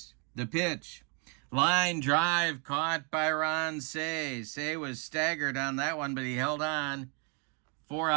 The pitch. Line drive caught by Ron Cey. Cey was staggered on that one, but he held on. 4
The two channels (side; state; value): left; quieter; 36.5 dB